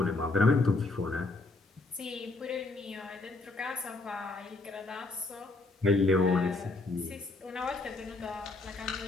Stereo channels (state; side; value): quieter; right; 3.3 dB